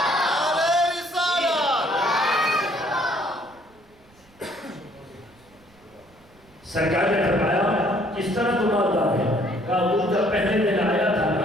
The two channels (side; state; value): right; noise; rumble, 30 dB below the sound